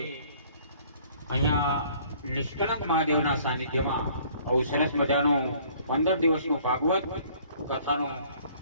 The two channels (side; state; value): both; inverted; correlation -0.57